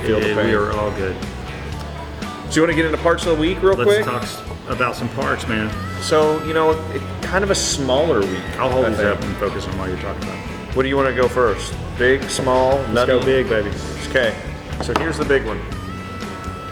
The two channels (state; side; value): identical; both; correlation 1.00